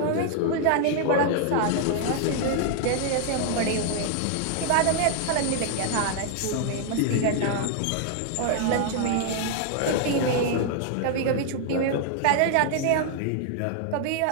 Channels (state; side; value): different; both; correlation 0.00